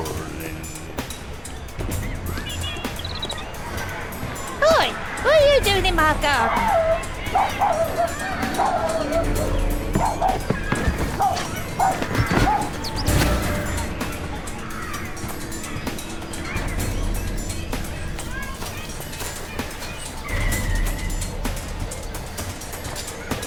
Oi! What are you doing in my garden?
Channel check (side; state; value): both; identical; correlation 1.00